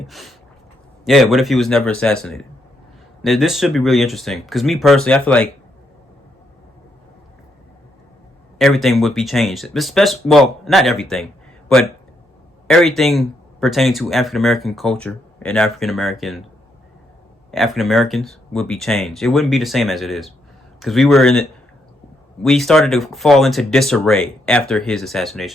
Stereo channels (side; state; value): both; normal; correlation 0.77